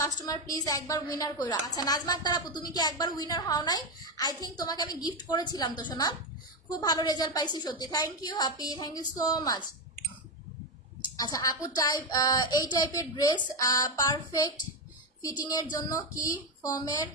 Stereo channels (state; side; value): normal; both; correlation 0.10